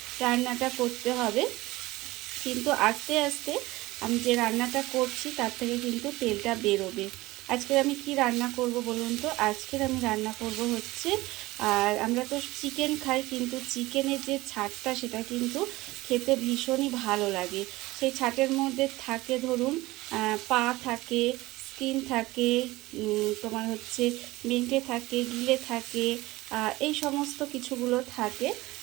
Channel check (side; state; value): left; quieter; 19.5 dB